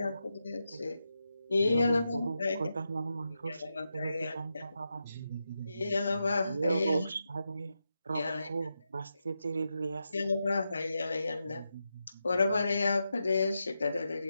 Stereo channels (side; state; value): both; inverted; correlation -0.87